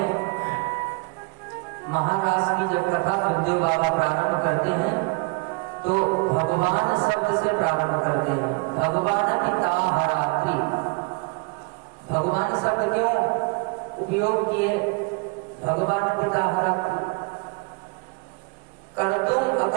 महाराज की जब कथा सुखदेव बाबा प्रारंभ करते हैं तो भगवान शब्द से प्रारंभ करते हैं। भगवान पिता हरात्रि, भगवान शब्द क्यों उपयोग किए? भगवान पिता हरात्रि, कर्तुम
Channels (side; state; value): left; quieter; 29.7 dB